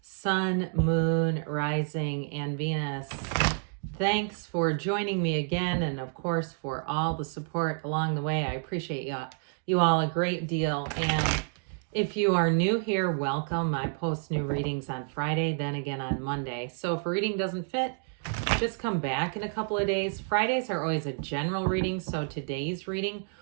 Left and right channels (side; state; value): left; silent; 58 dB below the other